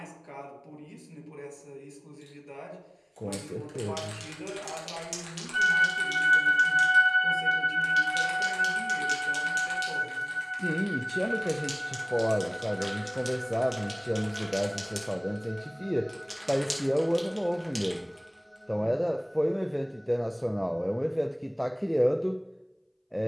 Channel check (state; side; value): identical; both; correlation 1.00